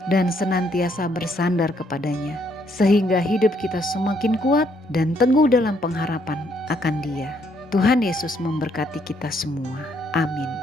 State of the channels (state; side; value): normal; both; correlation 0.71